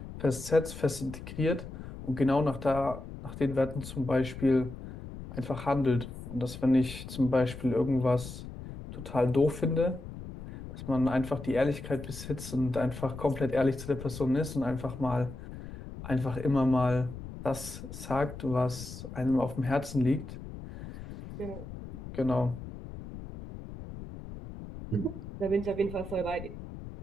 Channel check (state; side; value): noise; left; rumble, 11 dB below the sound